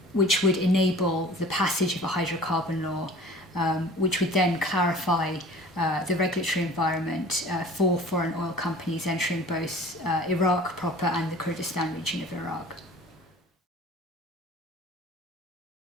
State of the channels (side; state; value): both; normal; correlation 0.44